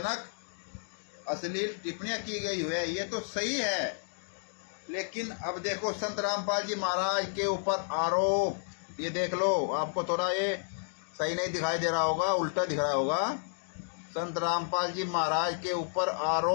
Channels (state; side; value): silent; right; digital silence